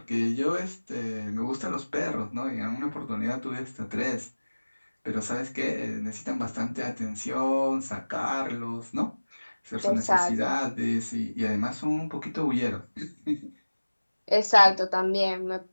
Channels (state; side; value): inverted; both; correlation -1.00